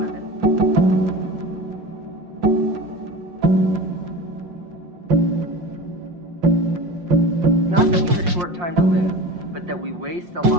of it. Not that we have a short time to live, but that we waste a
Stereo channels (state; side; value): late; left; 5.6 ms